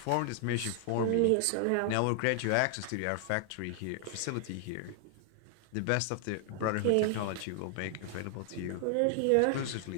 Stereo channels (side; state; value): both; different; correlation 0.00